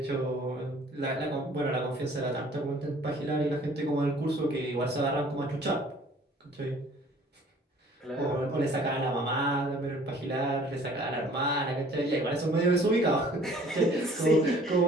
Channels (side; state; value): both; normal; correlation 0.54